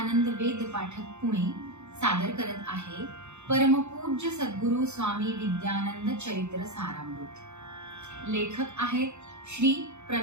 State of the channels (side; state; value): left; late; 0.82 ms